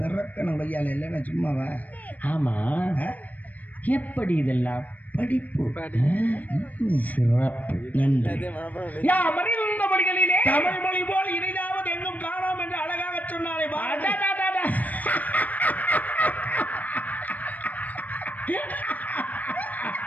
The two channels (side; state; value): right; late; 0.076 ms